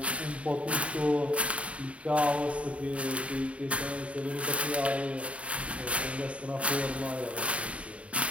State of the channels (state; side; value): late; left; 0.064 ms